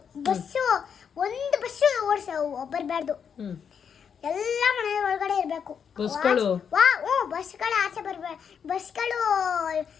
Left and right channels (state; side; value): quieter; right; 7.2 dB